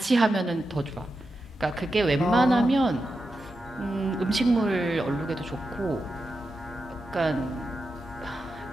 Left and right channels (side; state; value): both; normal; correlation 0.89